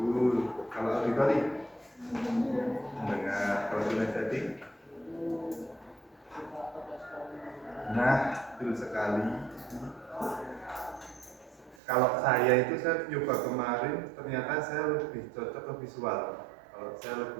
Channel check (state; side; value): drops out; left; at 11.8 s